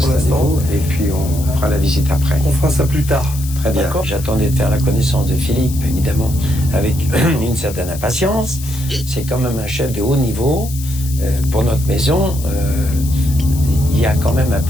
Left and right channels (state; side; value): noise; left; hiss, 13 dB below the sound